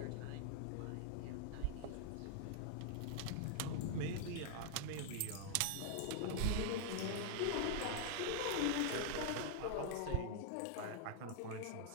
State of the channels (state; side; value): different; both; correlation 0.00